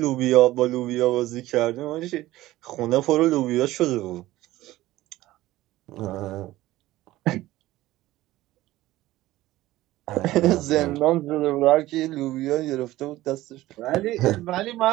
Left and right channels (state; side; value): quieter; left; 16.5 dB